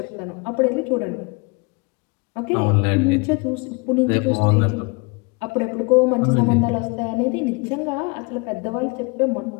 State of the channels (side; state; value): right; quieter; 29.3 dB